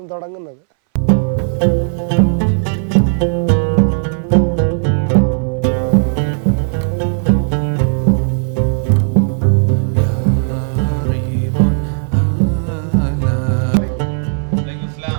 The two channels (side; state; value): left; silent; 63 dB below the other